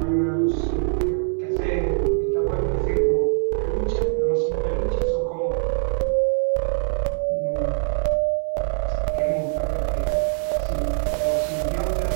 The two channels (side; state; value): left; silent; 63 dB below the other